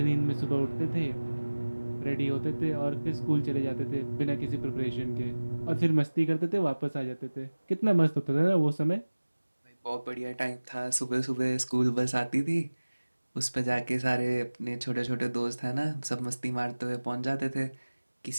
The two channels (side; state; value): both; inverted; correlation -1.00